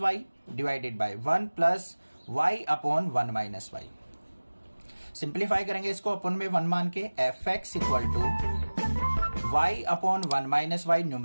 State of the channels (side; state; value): both; inverted; correlation -1.00